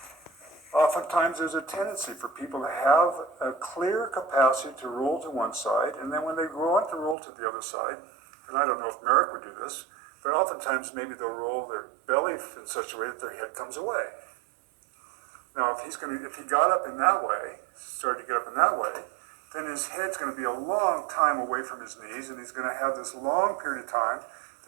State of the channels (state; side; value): drops out; left; at 7.2 s